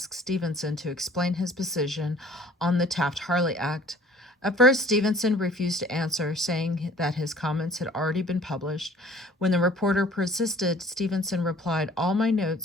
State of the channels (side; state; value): both; normal; correlation 0.51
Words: Stevenson to explain his position on the Taft-Hartley Act. At first, Stevenson refused to answer, saying that his comments had already been published. When the reporter persisted, Stevenson replied, "All my